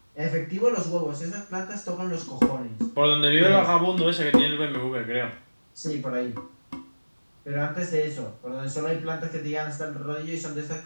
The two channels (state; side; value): inverted; both; correlation -1.00